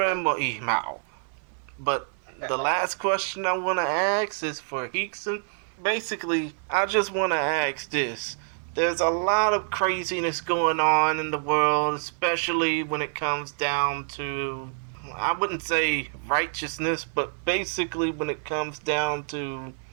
Emanuel. But the last question I want to ask is for Rickson. Basically, I just want to ask this. There's a lot of craziness going on in the world, especially when it comes down to, I wouldn't say righteousness, but basically when it comes down to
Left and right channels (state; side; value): silent; left; 60 dB below the other